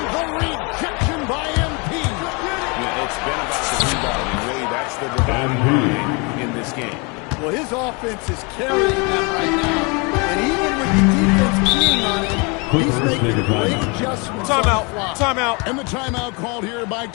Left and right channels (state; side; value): quieter; right; 30.6 dB